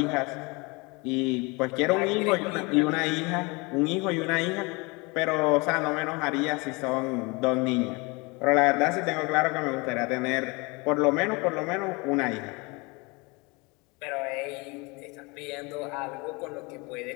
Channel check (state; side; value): quieter; right; 27.2 dB